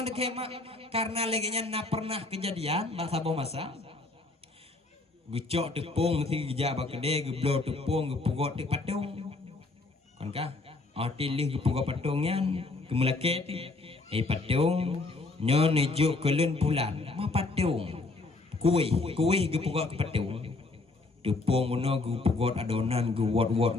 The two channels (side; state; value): right; quieter; 3.4 dB